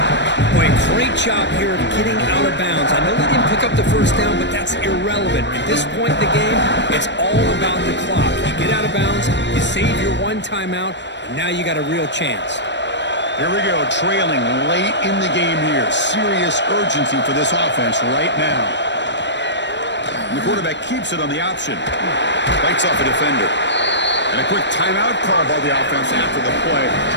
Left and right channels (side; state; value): right; late; 0.52 ms